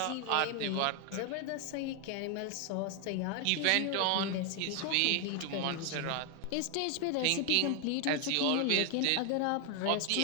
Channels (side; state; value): both; different; correlation 0.00